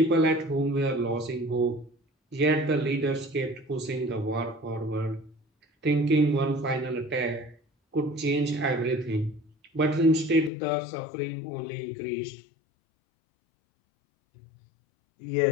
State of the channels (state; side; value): drops out; right; at 10.5 s